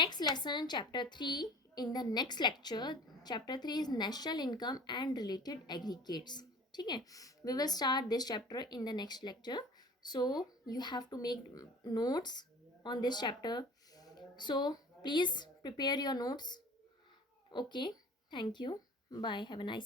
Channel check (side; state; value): both; normal; correlation 0.44